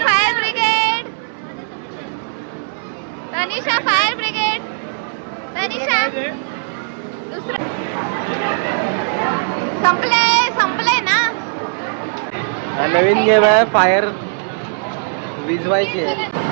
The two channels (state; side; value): silent; left; digital silence